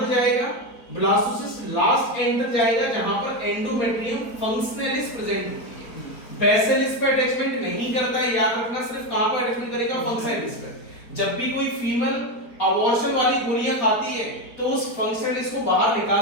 जाएगा? ब्लास्टोसिस्ट लास्ट एंड तक जाएगा जहां पर एंडोमेट्रियम फंक्शनलिस प्रेजेंट होती है। बेसिलिस पे अटैचमेंट नहीं करता है, याद रखना, सिर्फ कहां पर अटैचमेंट करेगा? फंक्शनलिस पे। जब भी कोई फीमेल अबॉर्शन वाली गोलियां खाती है तो उस फंक्शनलिस को बाहर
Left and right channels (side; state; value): right; late; 4.2 ms